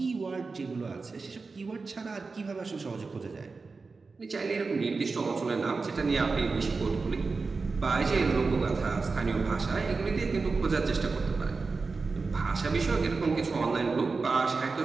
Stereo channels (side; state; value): left; quieter; 4.2 dB